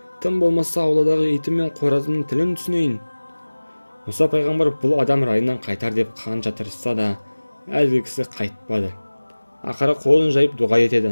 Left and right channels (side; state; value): both; inverted; correlation -1.00